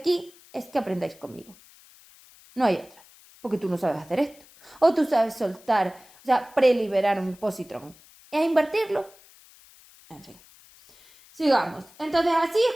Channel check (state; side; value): noise; left; hiss, 25 dB below the sound